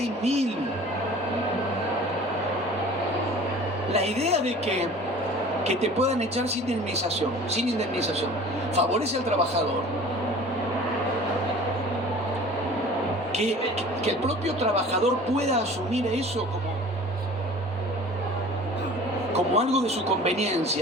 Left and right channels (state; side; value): normal; both; correlation 0.44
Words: mil. La idea de que te puedan echar sin indemnización, favorece al trabajador. Que el propio trabajador pueda asumir eso como algo de su